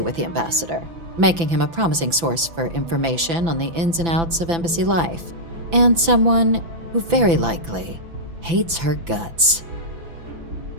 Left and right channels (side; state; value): left; late; 6.0 ms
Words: the ambassador, making him a promising source for information on the ins and outs of embassy life, and someone who very likely hates her guts.